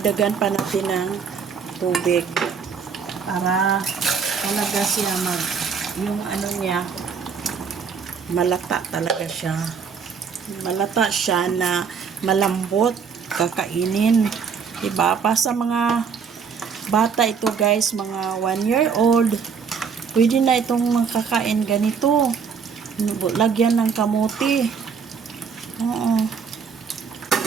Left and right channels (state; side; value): quieter; left; 6.2 dB